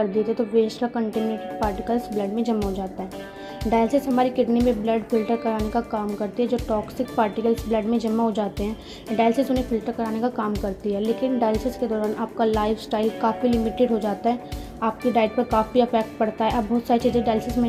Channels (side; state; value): both; identical; correlation 1.00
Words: देते तो वेस्ट का कंटेमिनेटेड पार्टिकल्स ब्लड में जमा हो जाता है। डायलिसिस हमारी किडनी में ब्लड फिल्टर कराने का काम करती है। जो टॉक्सिक पार्टिकल्स ब्लड में जमा हो जाते हैं डायलिसिस उन्हें फिल्टर कराने का काम करती है। लेकिन डायलिसिस के दौरान आपका लाइफस्टाइल काफ़ी लिमिटेड हो जाता है, आपकी डाइट पर काफ़ी इफेक्ट पड़ता है। आप बहुत सारी चीज़ें डायलिसिस में